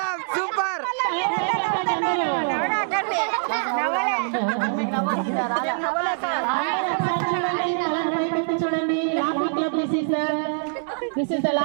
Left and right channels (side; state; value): left; silent; digital silence